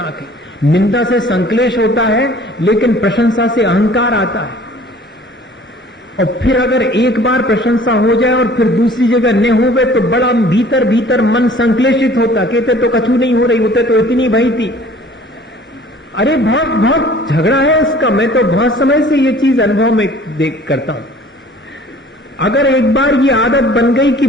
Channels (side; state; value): both; normal; correlation 0.51